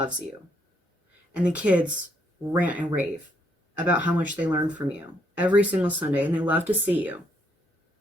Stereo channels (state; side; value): normal; both; correlation 0.73